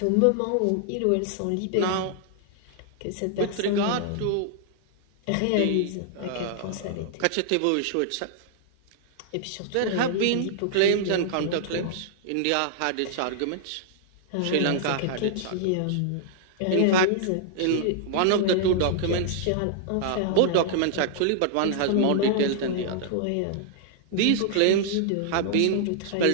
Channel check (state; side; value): different; both; correlation -0.01